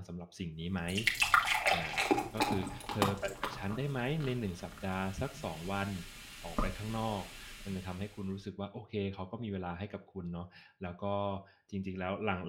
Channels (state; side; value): identical; both; correlation 1.00